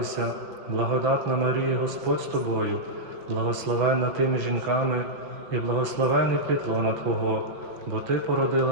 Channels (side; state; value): left; late; 5.5 ms